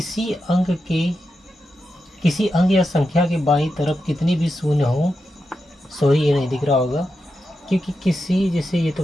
किसी अंक या संख्या के बाईं तरफ कितनी भी शून्य हो, सॉरी ये नहीं दिख रहा होगा, क्योंकि जैसे ये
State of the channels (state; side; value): normal; both; correlation 0.88